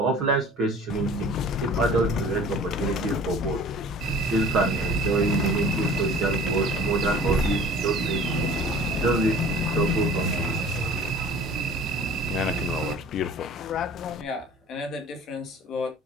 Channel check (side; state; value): both; normal; correlation 0.45